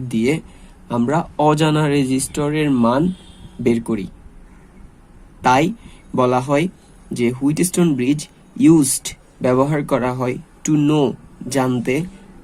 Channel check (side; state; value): both; identical; correlation 1.00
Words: দিয়ে আমরা অজানা রেজিস্টরের মান বের করি। তাই বলা হয় যে হুইটস্টোন ব্রিজ ইউজড ব্যবহার করা হয় টু নো জানতে